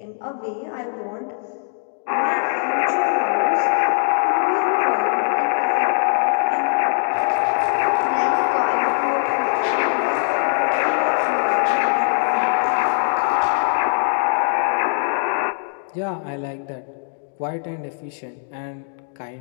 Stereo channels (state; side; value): silent; right; digital silence